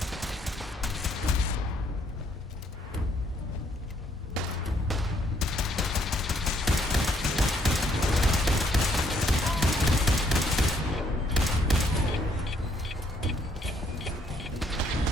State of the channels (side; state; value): both; normal; correlation 0.68